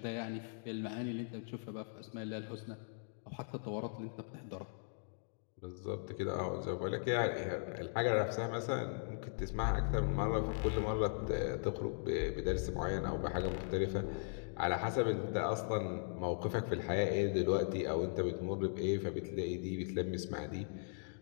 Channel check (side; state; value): right; silent; digital silence